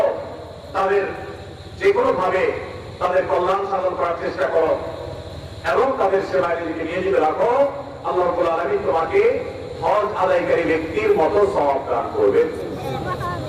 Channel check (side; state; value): both; identical; correlation 1.00